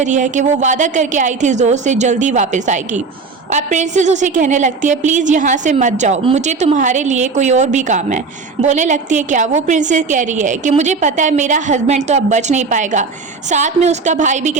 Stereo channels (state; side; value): quieter; left; 4.5 dB